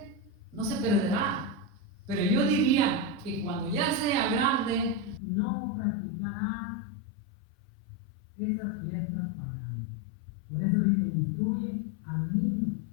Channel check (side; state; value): right; drops out; at 5.2 s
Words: No se perderá. Pero yo diría que cuando ya sea grande, no practicará esas fiestas paganas. Por eso dice: instruye al niño.